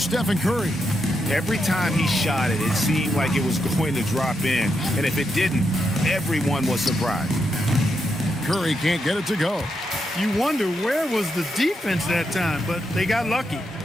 Curry. Every time he shot it, it seemed like it was going to drop in. And if it didn't, everyone was surprised. Curry can't get it to go. You wonder where was the defense that time, but they got lucky.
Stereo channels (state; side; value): normal; both; correlation 0.83